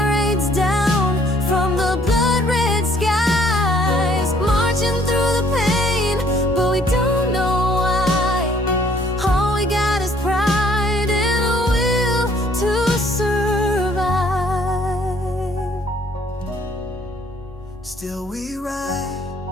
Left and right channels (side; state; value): both; normal; correlation 0.62